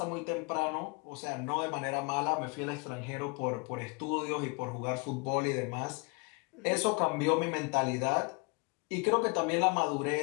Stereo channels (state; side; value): quieter; right; 30.1 dB